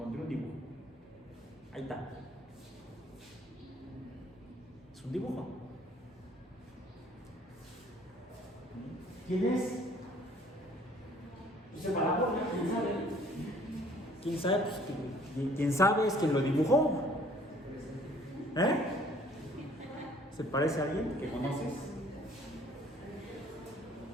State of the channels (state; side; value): normal; both; correlation 0.57